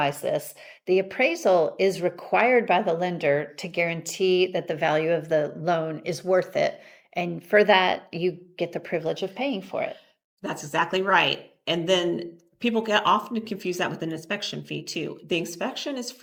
this, the appraisal is required by the lender to guarantee that the value of the loan is worth it. And for that, you get the privilege of paying for it. That's exactly right. And then people get often confuse that with an inspection fee too. The inspection is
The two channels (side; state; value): both; identical; correlation 1.00